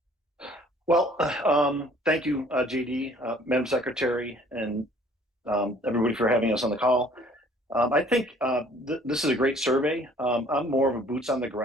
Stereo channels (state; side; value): normal; both; correlation 0.56